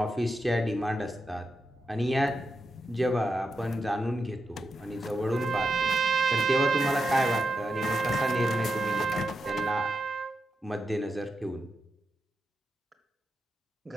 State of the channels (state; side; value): normal; both; correlation 0.86